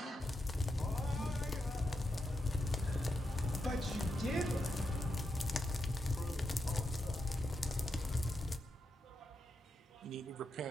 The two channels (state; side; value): normal; both; correlation 0.85